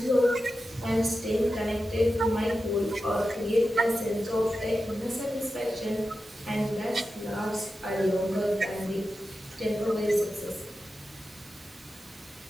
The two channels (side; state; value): both; normal; correlation 0.91